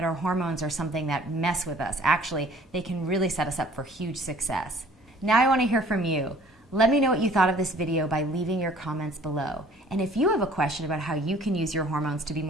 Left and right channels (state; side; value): normal; both; correlation 0.53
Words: our hormones are something that mess with us. Actually, they can really set us up for huge success. Now I want to hear from you. Let me know what you thought of this video by leaving your comments below. And if you have a question about how you can use your hormones to be